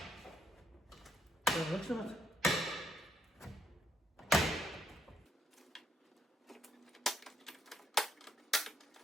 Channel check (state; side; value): normal; both; correlation 0.74